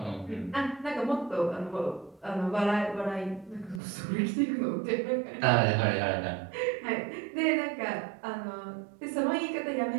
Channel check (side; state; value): left; drops out; at 3.8 s